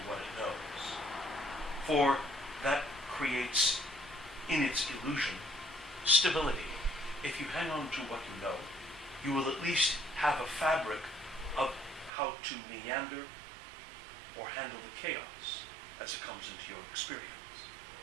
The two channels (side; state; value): left; drops out; at 12.1 s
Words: what it knows. For that creates, in its illusion, stability. If you hang on to what you know, you will at least have a fabric of how to meander or handle the chaos as it comes into your experience.